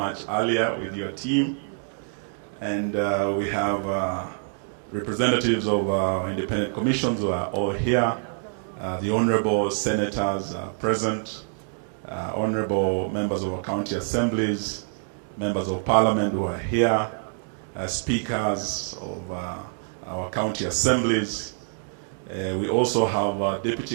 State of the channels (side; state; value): left; silent; 61 dB below the other